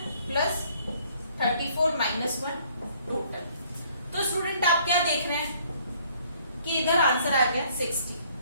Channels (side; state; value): both; inverted; correlation -0.61